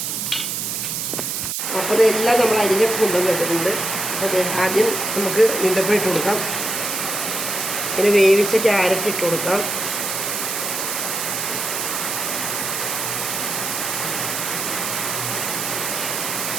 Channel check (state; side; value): noise; right; hiss, 2 dB below the sound